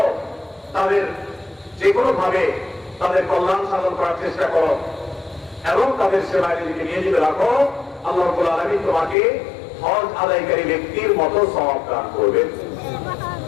তাদের যে কোনো ভাবে তাদের কল্যাণ সাধন করার চেষ্টা করো এবং তাদের সেবায় নিজেকে নিয়োজিত রাখো, আল্লাহ রাব্বুল আলামিন তোমাকে হজ আদায়কারী ব্যক্তির মতো সওয়াব দান করবেন।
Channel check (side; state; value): right; drops out; at 9.2 s